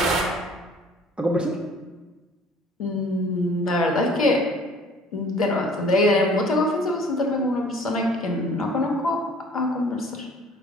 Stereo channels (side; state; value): both; normal; correlation 0.52